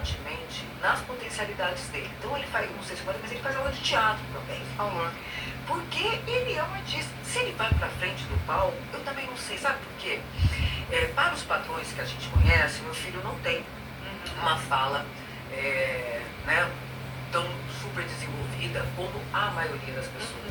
nas potencialidades dele. Então ele faz, não sei se pode, mas ele faz aula de teatro também. Porque ele é um artista. Se ele vai pra frente do palco, eu também não sei. Sabe por quê? Para os padrões que a gente conhece, meu filho não tem uma fala né, tão super desenvolvida como a maioria das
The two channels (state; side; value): identical; both; correlation 1.00